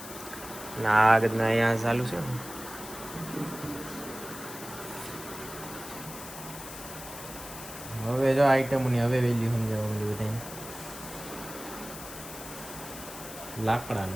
ના આગળ અહીંયા ચાલુ છે. હવે જો આઈટમોની હવે વેલ્યુ સમજાવવા મળ્યું બધાને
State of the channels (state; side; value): noise; left; hiss, 12 dB below the sound